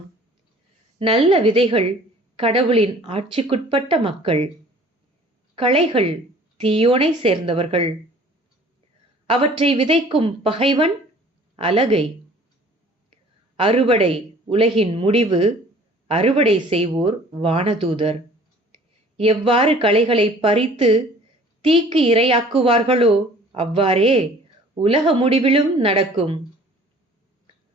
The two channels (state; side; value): normal; both; correlation 0.50